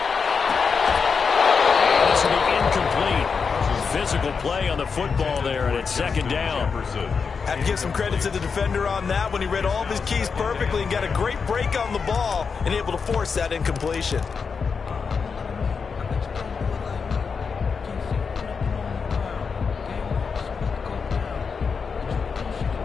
And this will be incomplete. Physical play on the football there, and it's 2nd down. Have to give some credit to the defender on that when he read all of his keys perfectly and got a great break on the ball and able to force that incompletion.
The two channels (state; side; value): quieter; right; 5.5 dB